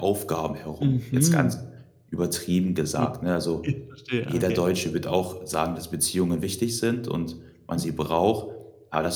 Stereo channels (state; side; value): identical; both; correlation 1.00